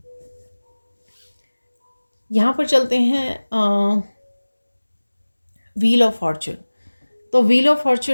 यहाँ पर चलते हैं व्हील ऑफ फॉर्चून। तो व्हील ऑफ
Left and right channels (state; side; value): inverted; both; correlation -1.00